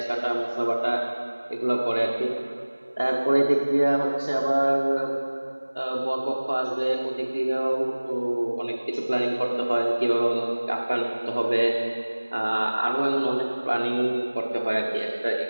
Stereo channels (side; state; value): both; inverted; correlation -1.00